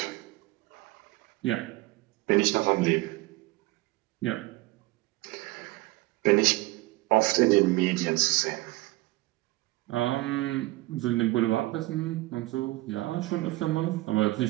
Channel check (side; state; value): left; quieter; 20.0 dB